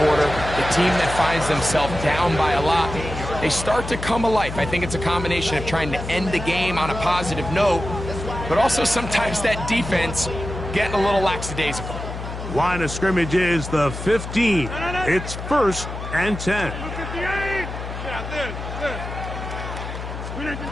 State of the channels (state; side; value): noise; left; hum, 8 dB below the sound